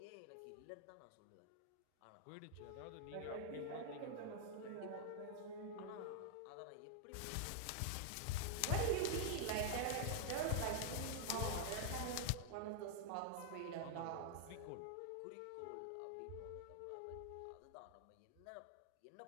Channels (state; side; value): different; both; correlation 0.00